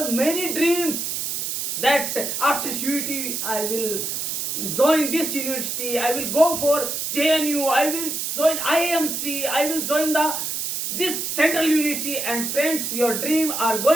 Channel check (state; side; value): noise; right; hiss, 3 dB below the sound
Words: many dreams that after CUET I will join this university, I will go for JNU, I will join IMC, I will join this central university, and friends, your dream are